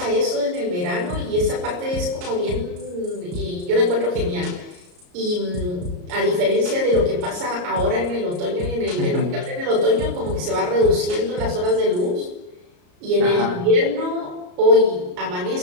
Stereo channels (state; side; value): late; left; 34 ms